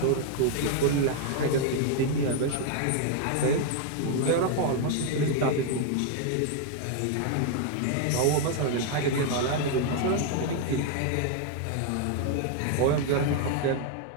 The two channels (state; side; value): different; both; correlation 0.00